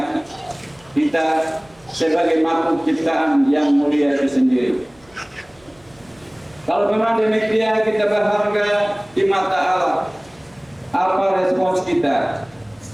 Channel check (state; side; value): noise; right; rumble, 30 dB below the sound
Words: kita sebagai makhluk ciptaan yang mulia itu sendiri. Kalau memang demikian kita berharga di mata Allah, apa respons kita